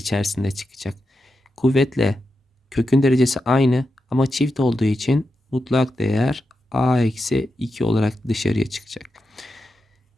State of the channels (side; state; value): both; normal; correlation 0.88